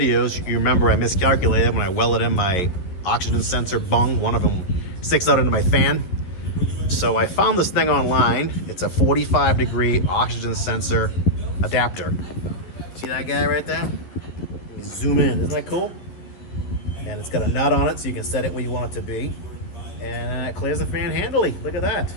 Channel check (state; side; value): late; right; 11 ms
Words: you remember I miscalculated when I welded in my oxygen sensor bung. One of them sticks out into my fan. So I found this thing online. It's a 45-degree oxygen sensor adapter. See that guy right there? Zoom in. Isn't that cool? And it's got a nut on it so you can set it where you want it to be. And it clears the fan handily. Look at that.